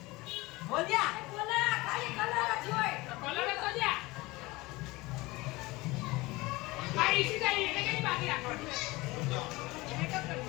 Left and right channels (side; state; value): right; quieter; 21.6 dB